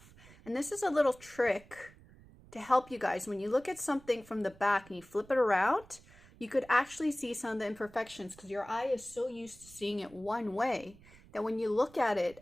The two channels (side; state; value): right; noise; rumble, 23 dB below the sound